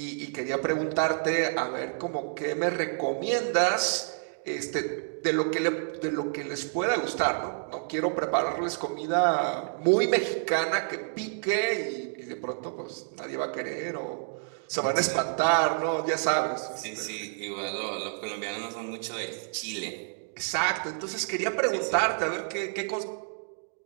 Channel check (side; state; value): left; silent; digital silence